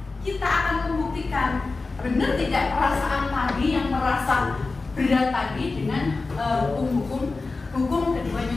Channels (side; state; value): right; quieter; 3.7 dB